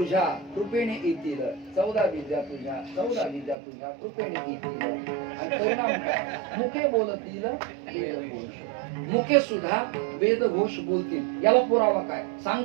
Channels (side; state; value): left; drops out; at 3.6 s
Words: कृपेने येतील. 14 विद्या तुझ्या, 14 विद्या तुझ्या कृपेने येतील. आणि परिणाम काय? मुके बोलतील वेदघोष. मुके सुद्धा वेदघोष बोलतील. याला पुरावा काय